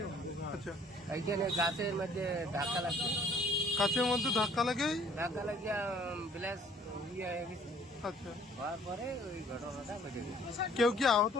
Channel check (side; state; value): both; normal; correlation 0.58